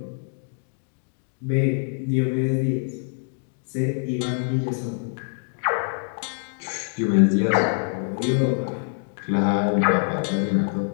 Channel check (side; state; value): right; silent; digital silence